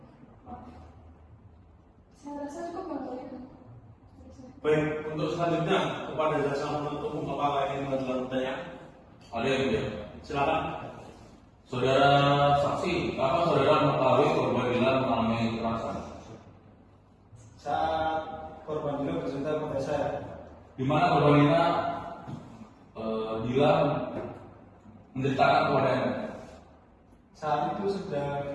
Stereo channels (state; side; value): identical; both; correlation 1.00